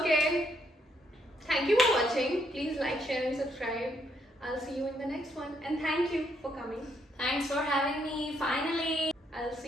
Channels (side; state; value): both; normal; correlation 0.74